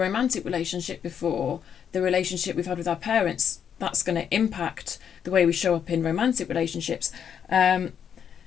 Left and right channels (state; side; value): quieter; right; 8.2 dB